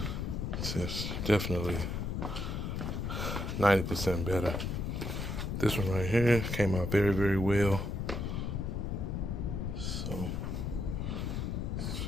it's definitely 90% better. This one right here came out very, very well. So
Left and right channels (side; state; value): left; noise; rumble, 2 dB below the sound